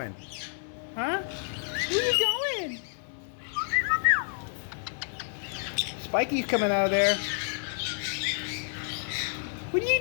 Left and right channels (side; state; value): right; silent; 58 dB below the other